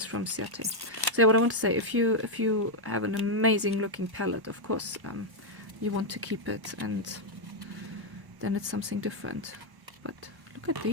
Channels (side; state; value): left; late; 1.1 ms